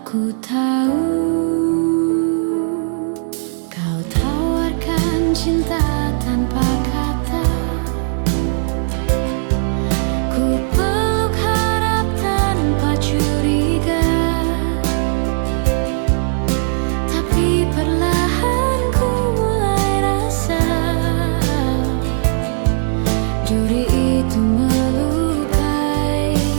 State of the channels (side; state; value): left; silent; digital silence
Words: ku tahu. Kau tawarkan cinta tanpa kata, ku peluk harap tanpa curiga. Tapi perlahan ku mulai rasa duri itu melukai